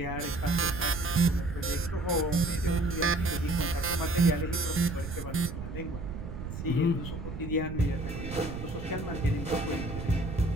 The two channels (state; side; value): noise; right; rumble, 8 dB below the sound